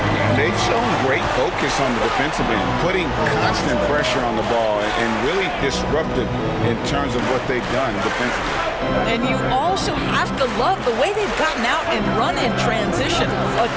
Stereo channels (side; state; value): both; identical; correlation 1.00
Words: And they've shown great focus on the defensive end, putting constant pressure on the ball and really disruptive in terms of what they've done defensively. And you also have to love the way they've gotten out and run in transition. A